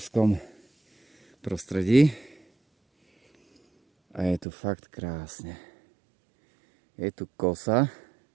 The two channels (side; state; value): left; drops out; at 4.5 s